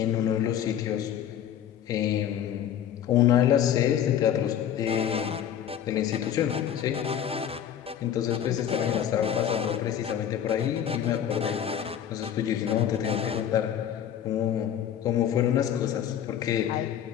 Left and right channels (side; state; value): right; quieter; 9.8 dB